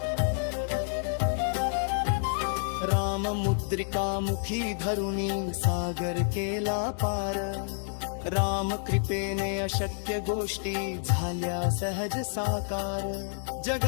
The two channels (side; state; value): right; silent; digital silence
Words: राम मुद्रिका मुखी धरुनी सागर केला पार, राम कृपेने अशक्य गोष्टी झाल्या सहज साकार।